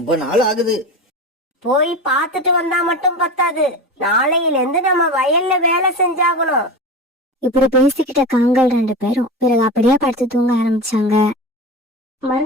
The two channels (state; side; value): normal; both; correlation 0.27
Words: நாள் ஆகுது. போய் பார்த்துட்டு வந்தா மட்டும் பத்தாது, நாளையில இருந்து நம்ம வயல்ல வேலை செஞ்சாகணும். இப்படி பேசிக்கிட்ட காங்கள் 2 பேரும் பிறகு அப்படியே படுத்து தூங்க ஆரம்பிச்சாங்க.